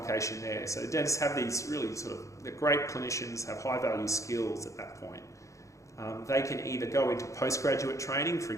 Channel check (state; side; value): late; right; 0.15 ms